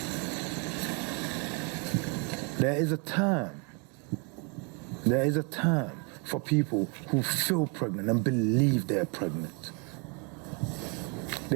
There is a term for people who feel pregnant and believe they're pregnant.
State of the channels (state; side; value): quieter; left; 33.8 dB